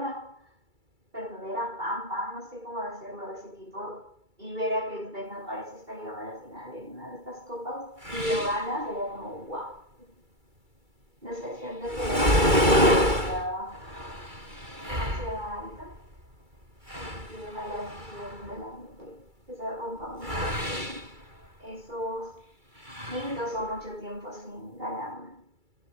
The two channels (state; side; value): late; left; 2.3 ms